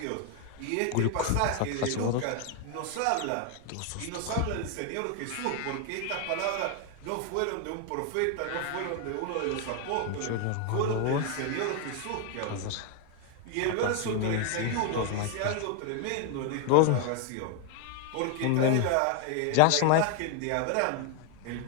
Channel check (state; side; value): different; both; correlation 0.01